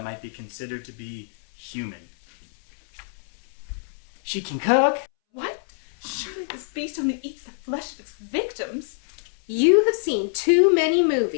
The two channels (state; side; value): silent; right; 61 dB below the other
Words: might be considered to be human? She can cook. What? Surely this beast only eats the flesh of its victims. You have seen too many